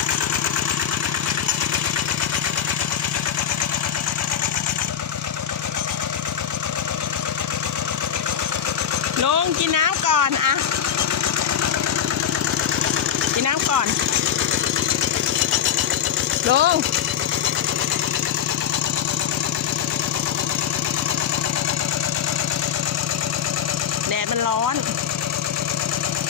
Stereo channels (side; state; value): right; quieter; 8.9 dB